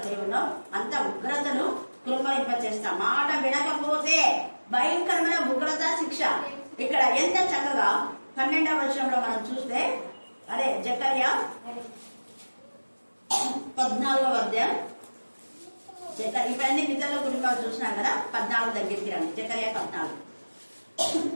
దేవునో అంత ఉగ్రతను కుమ్మరింపచేస్తా. మాట వినకపోతే భయంకరమైన ఉగ్రత శిక్ష. ఇక్కడ ఎంత చక్కగా 12వ వచనంలో మనం చూస్తే, అదే జకర్యా 14వ అధ్యాయం. ఇవన్నీ పితరుల కుటుంబాలు చూసినాం కదా. 14 దగ్గరికి రండి. జకర్యా 14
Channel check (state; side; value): inverted; both; correlation -1.00